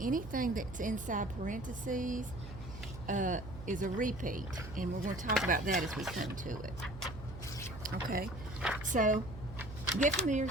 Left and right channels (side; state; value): right; noise; hum, 12 dB below the sound